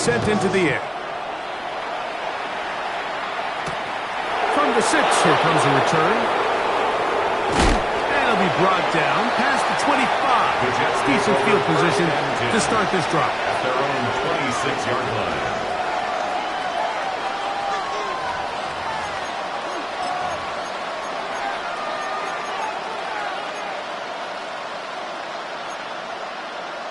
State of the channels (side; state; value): both; identical; correlation 1.00